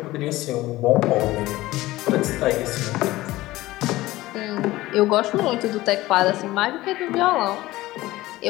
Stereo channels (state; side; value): quieter; right; 17.8 dB